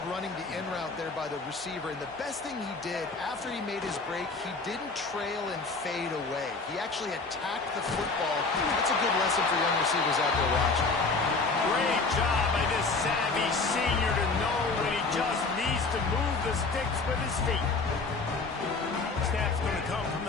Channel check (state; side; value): quieter; right; 4.0 dB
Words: running the in route there by the receiver, and the best thing he did after he made his break, he didn't trail and fade away. He actually attacked the football. That's a good lesson for young receivers out there watching. Great job by this savvy senior to know when he just needs to move the sticks with his feet. Snap's going to come from